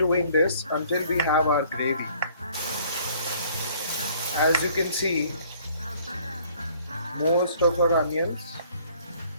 this until we have our gravy. As you can see, most of our onions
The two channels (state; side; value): inverted; both; correlation -0.58